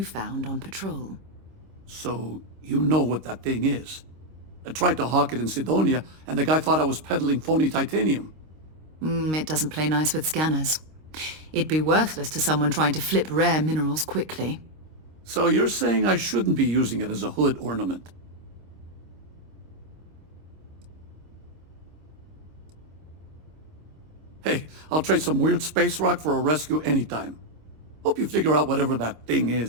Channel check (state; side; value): late; left; 26 ms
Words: found on patrol. So, you know what that thing is? I tried to hawk it in Sidonia, and the guy thought I was peddling phony titanium. It doesn't play nice with scanners. It'd be worthless to someone trying to flip rare minerals quickly. So you're saying I shouldn't be using it as a hood ornament? Hey, I'll trade some weird space rock for a rescue anytime. Hope you figure out whatever that thing